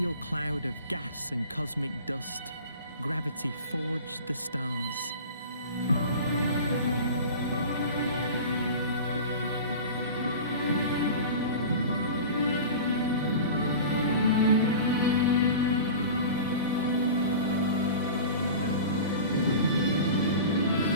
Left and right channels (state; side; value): inverted; both; correlation -0.34